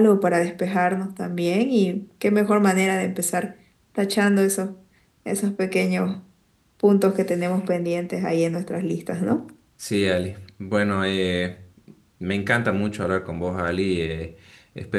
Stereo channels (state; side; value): identical; both; correlation 1.00